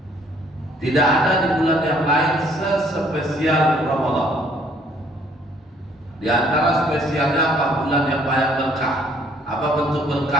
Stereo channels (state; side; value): normal; both; correlation 0.62